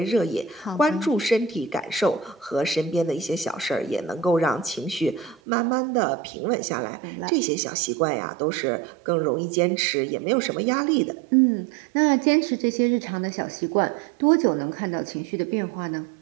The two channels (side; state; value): left; drops out; at 5.4 s